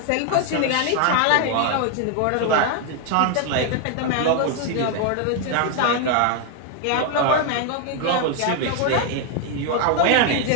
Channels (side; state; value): both; different; correlation 0.01